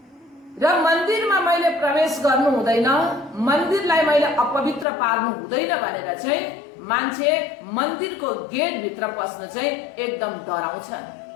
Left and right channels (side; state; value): right; drops out; at 4.9 s